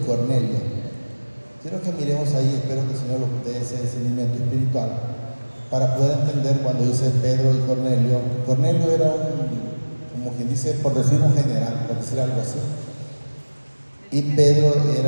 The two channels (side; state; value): both; inverted; correlation -1.00